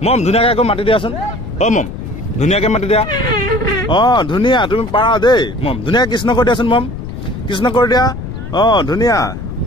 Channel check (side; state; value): left; noise; rumble, 9 dB below the sound